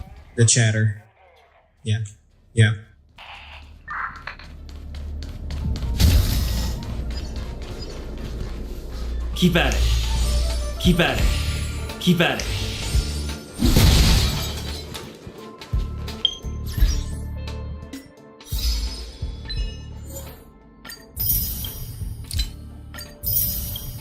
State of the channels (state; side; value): identical; both; correlation 1.00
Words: The chatter. Yeah. Yeah. Keep at it. Keep at it. Keep at it.